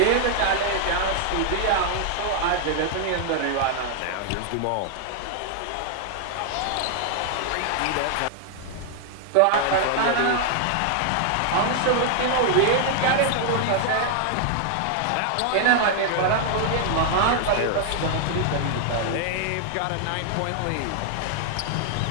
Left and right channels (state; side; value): different; both; correlation 0.00